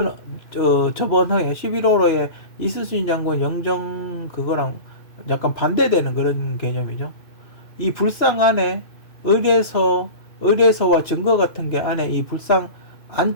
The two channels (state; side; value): late; right; 2.6 ms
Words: 저번 해에 11월호에 이수신 장군 영정 그거랑 약간 반대되는 그런 개념이죠. 이 불상 안에 의뢰서와 증거 같은 게 안에 이 불상